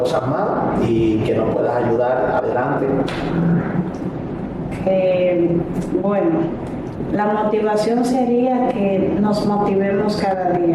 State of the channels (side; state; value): both; identical; correlation 1.00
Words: más, y que nos puedas ayudar adelante. Bueno, la motivación sería que nos motivemos cada